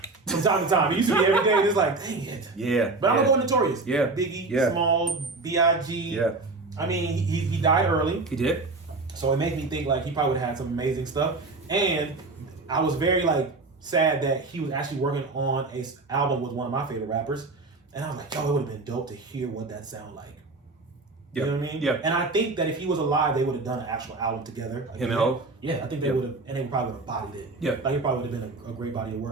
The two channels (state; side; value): quieter; left; 3.5 dB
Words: From time to time. It used to be every day, and it's like, dang it. Yeah. But I'm gonna go with Notorious. Yeah. Biggie, Yeah. Small, B.I.G. Yeah. I mean, he died early. He did. So it made me think like he probably would have had some amazing stuff. And I was very like sad that he was actually working on a album with one of my favorite rappers. And I was like, yo, it would have been dope to hear what that sound like. You know what I mean? Yeah. And I think that if he was alive, they would have done an actual album together. Like, Him and Ho? Yeah, I think they would have, and they probably would have bodied it. Yeah. Like it probably would have been a great body of